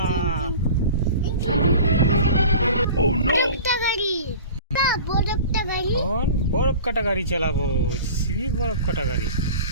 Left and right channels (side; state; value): both; inverted; correlation -0.39